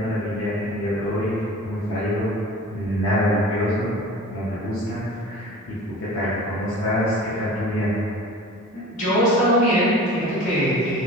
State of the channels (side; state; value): both; normal; correlation 0.40